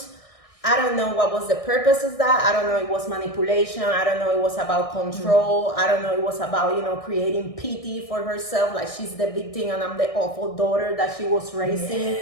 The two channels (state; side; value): late; right; 1.6 ms